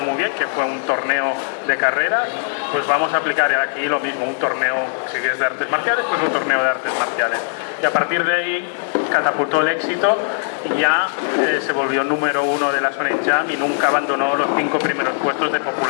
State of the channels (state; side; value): silent; right; 66 dB below the other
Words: muy bien, que fue un torneo de carreras, pues vamos a aplicar aquí lo mismo, un torneo, si es de artes marciales, pues un torneo de artes marciales, y a partir de ahí catapultó el éxito y ya se volvió número 1 de la Shonen Jump y nunca abandonó los 5 primeros puestos de